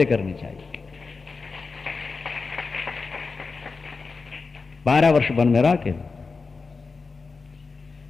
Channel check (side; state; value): right; quieter; 4.4 dB